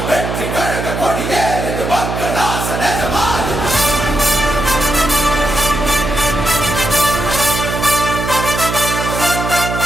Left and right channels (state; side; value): noise; right; hum, 4 dB below the sound